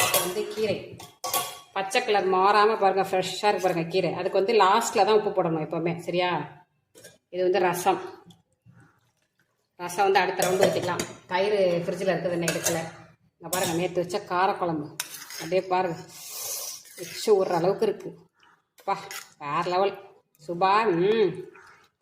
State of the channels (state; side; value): identical; both; correlation 1.00